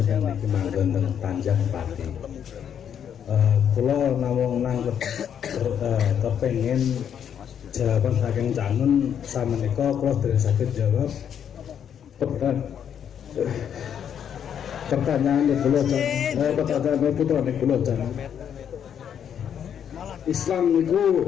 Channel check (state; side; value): quieter; right; 8.7 dB